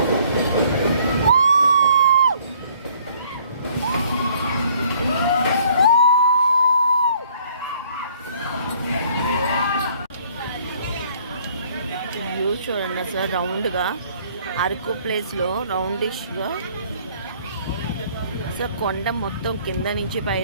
చూడండి అసలు రౌండ్గా అరకు ప్లేస్లో రౌండిష్గా అసలు కొండ మొత్తం కింద నుంచి పై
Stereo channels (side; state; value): both; inverted; correlation -0.60